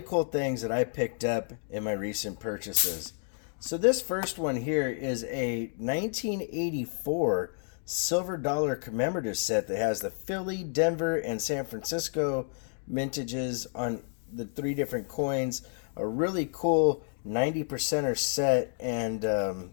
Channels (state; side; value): silent; right; 58 dB below the other